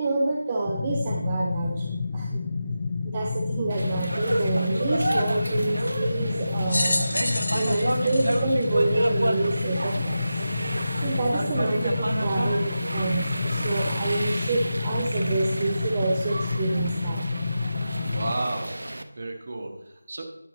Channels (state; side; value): inverted; both; correlation -0.90